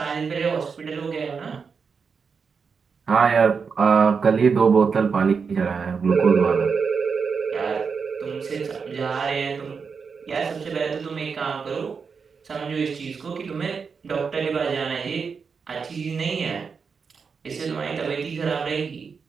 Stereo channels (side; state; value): left; quieter; 5.6 dB